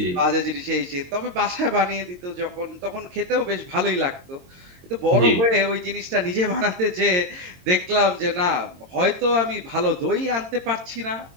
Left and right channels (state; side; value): late; left; 22 ms